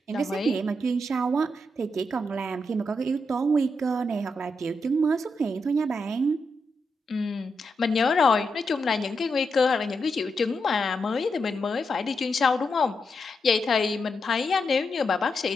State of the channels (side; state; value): both; normal; correlation 0.84